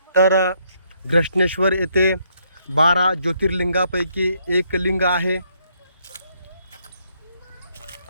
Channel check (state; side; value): inverted; both; correlation -0.72